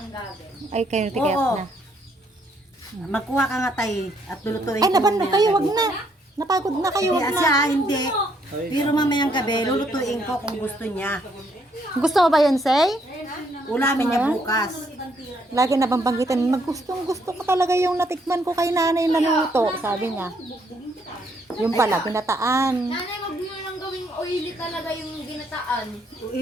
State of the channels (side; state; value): both; normal; correlation 0.70